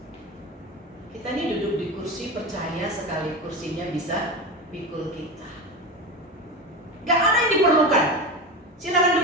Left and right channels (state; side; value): normal; both; correlation 0.23